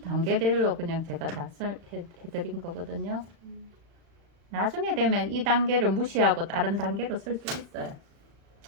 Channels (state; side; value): late; left; 36 ms